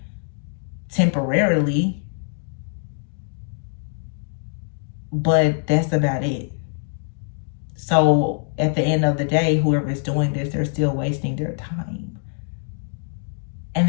temporarily, but that's about it. So at the end of the day, whoever's doing this, they're still wasting their time. And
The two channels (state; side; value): silent; right; 63 dB below the other